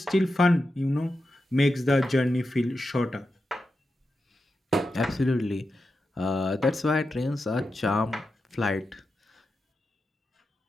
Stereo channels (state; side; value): normal; both; correlation 0.89